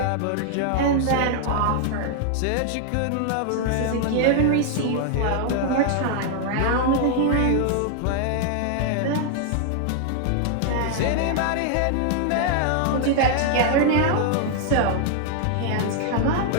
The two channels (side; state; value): both; different; correlation 0.00